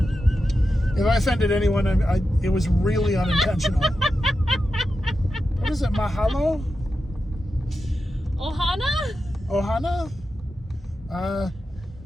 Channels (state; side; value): normal; both; correlation 0.90